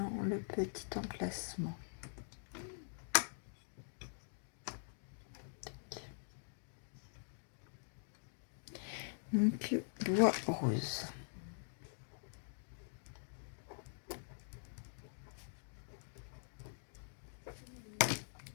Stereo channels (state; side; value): silent; right; digital silence